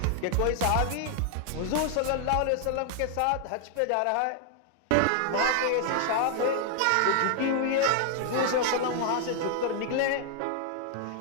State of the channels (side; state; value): both; different; correlation 0.00